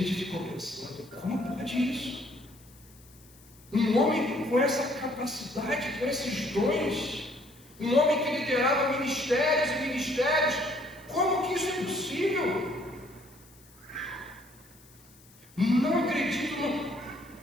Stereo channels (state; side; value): noise; left; hiss, 25 dB below the sound